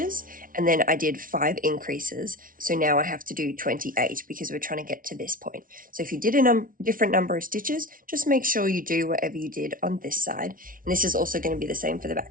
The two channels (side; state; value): left; late; 0.40 ms